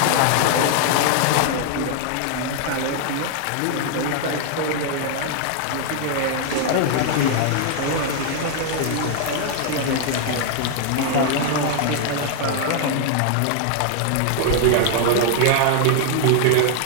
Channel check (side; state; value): both; different; correlation 0.00